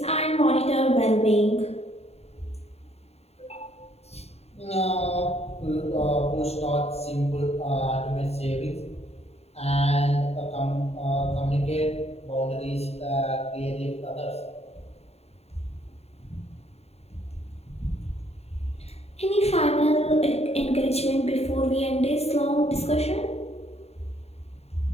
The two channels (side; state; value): right; late; 0.30 ms